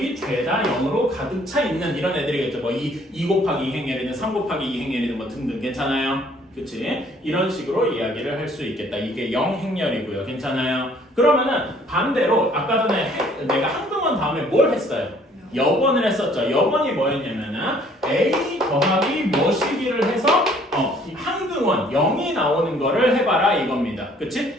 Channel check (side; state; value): both; normal; correlation 0.59